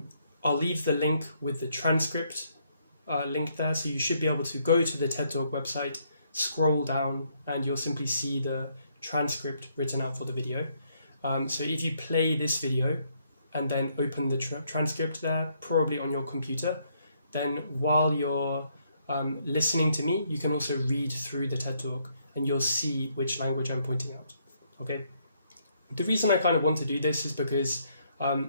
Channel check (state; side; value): inverted; both; correlation -0.72